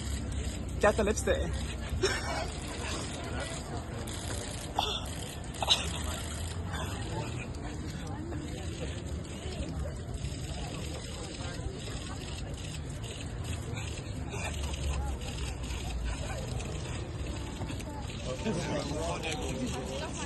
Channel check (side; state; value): both; identical; correlation 1.00